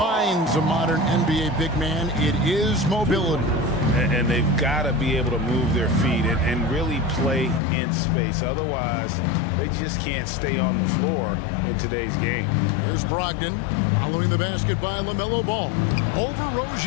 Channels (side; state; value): right; drops out; at 7.6 s